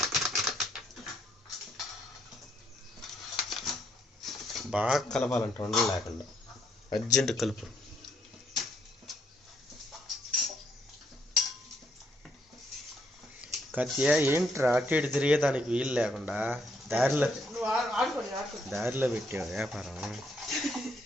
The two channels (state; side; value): normal; both; correlation 0.73